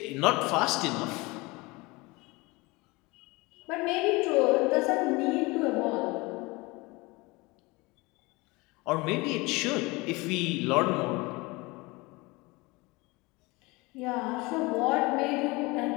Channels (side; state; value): right; quieter; 24.1 dB